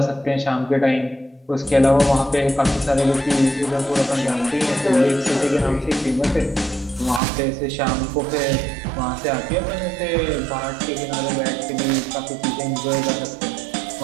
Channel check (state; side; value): drops out; left; at 7.2 s